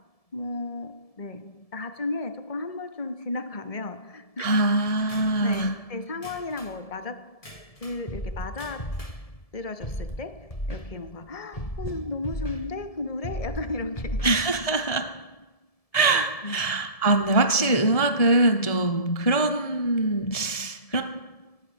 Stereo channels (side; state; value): right; late; 1.7 ms